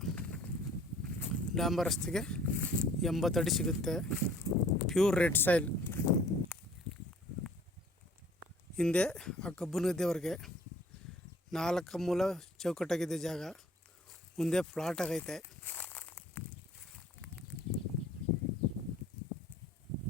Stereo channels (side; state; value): both; normal; correlation 0.53